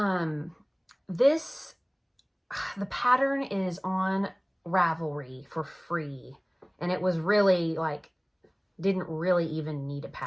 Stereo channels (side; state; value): both; identical; correlation 1.00